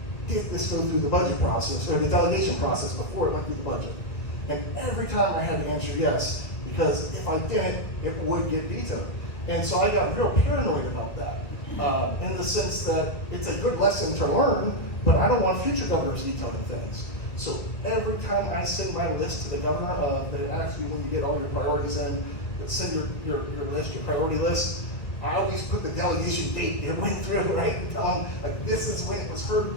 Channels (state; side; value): late; right; 1.7 ms